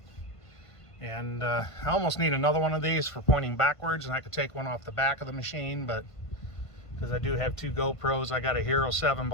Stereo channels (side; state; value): right; late; 1.5 ms